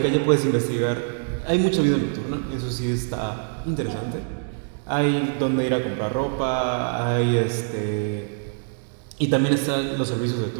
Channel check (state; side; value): silent; left; 61 dB below the other